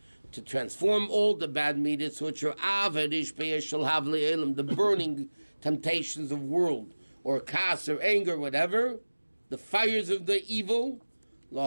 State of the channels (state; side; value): inverted; both; correlation -1.00